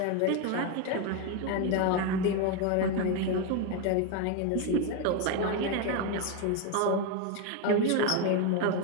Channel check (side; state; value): both; different; correlation 0.02